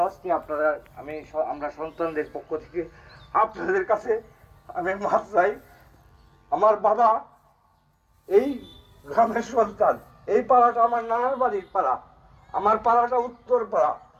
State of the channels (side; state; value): both; identical; correlation 1.00